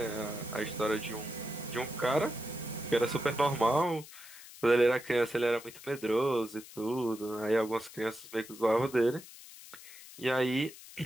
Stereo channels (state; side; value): noise; left; hiss, 17 dB below the sound